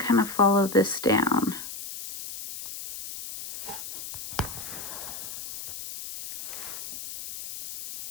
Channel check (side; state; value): left; noise; hiss, 10 dB below the sound